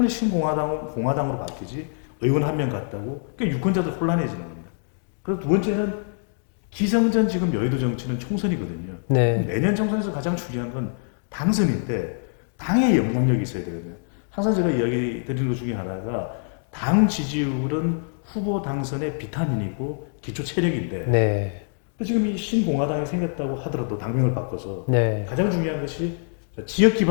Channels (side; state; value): right; silent; digital silence